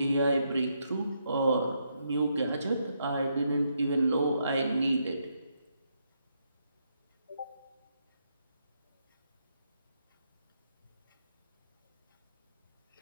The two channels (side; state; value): both; inverted; correlation -0.78